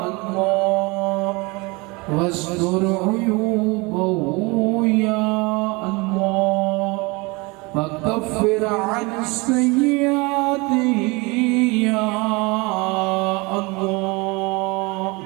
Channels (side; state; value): left; quieter; 26.3 dB